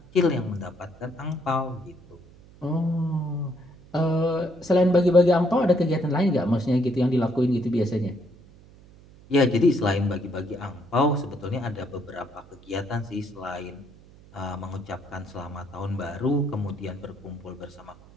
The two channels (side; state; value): right; noise; hum, 23 dB below the sound